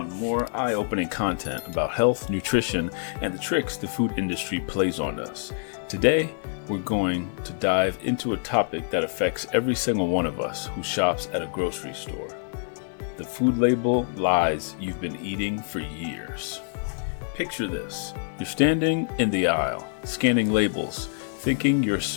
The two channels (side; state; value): right; silent; digital silence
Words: more eye-opening content about health, nutrition, and the tricks the food industry plays on us. Today, we're going to dive into a topic that affects every single one of us who shops at a grocery store. The food label lies you've been eating for years. Picture this. You're standing in the aisle, scanning labels, thinking you're